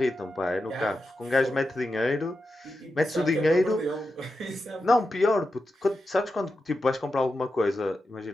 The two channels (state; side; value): normal; both; correlation 0.89